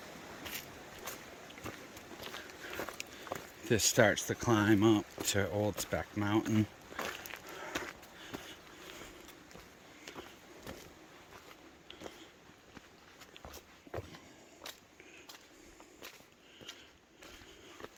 This starts the climb up to Old Speck Mountain.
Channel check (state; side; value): identical; both; correlation 1.00